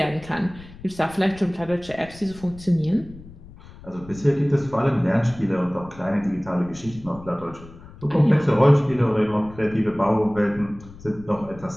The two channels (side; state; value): left; noise; rumble, 19 dB below the sound